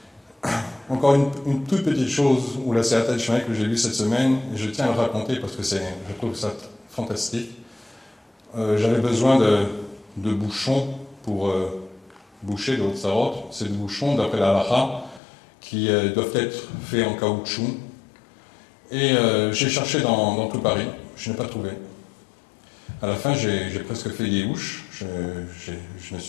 Encore une toute petite chose, ou la Siyata d'Ishmael que j'ai lue cette semaine, et je tiens à le raconter parce que je trouve ça fantastique. J'avais besoin de bouchons pour boucher de Hotzarot. C'est des bouchons, d'après la halakha, qui doivent être faits en caoutchouc. Et j'ai cherché dans tout Paris, je n'ai pas trouvé. À la fin, j'ai presque fait des houches, je me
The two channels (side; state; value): right; drops out; at 15.2 s